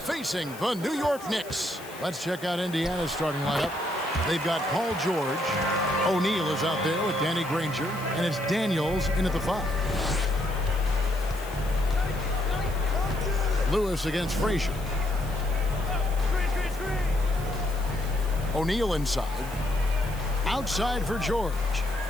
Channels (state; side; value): noise; left; hiss, 18 dB below the sound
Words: facing the New York Knicks. Let's check out Indiana's starting lineup. They've got Paul George. O'Neal is out there with Danny Granger. And it's Daniels in at the 5. Lewis against Frazier. O'Neal inside. Outside for George.